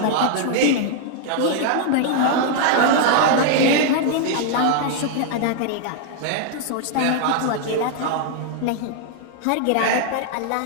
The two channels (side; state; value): both; different; correlation 0.00